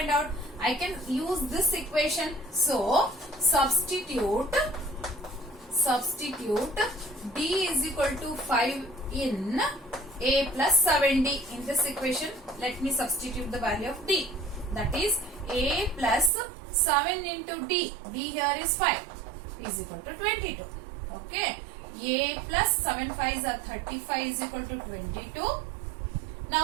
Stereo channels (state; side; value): drops out; left; at 16.3 s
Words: out? I can use this equation. So substitute D is equal to 5 in A plus 7D. In this equation, let me substitute the value of D. That is A plus 7 into D. D here is 5 is equal to 22. Okay. A plus 7 5s are 35 is equal to 22.